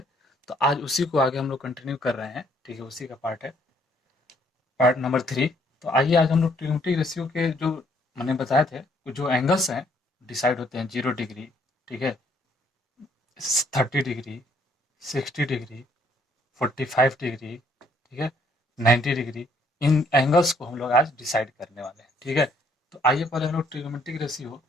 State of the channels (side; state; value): both; normal; correlation 0.66